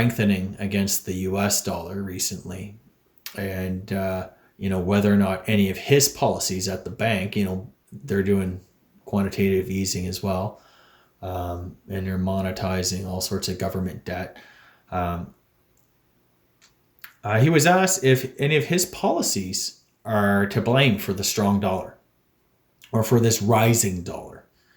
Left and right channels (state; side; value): identical; both; correlation 1.00